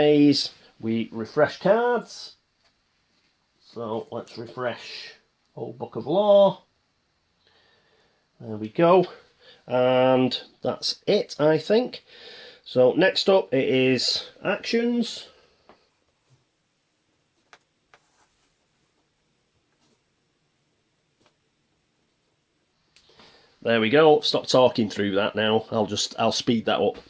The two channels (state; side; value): identical; both; correlation 1.00